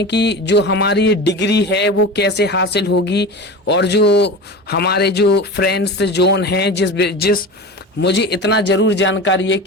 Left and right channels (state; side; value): normal; both; correlation 0.30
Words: कि जो हमारी डिग्री है वो कैसे हासिल होगी। और जो हमारे जो फ्रेंड्स जोन हैं, जिस मुझे इतना जरूर जानकारी है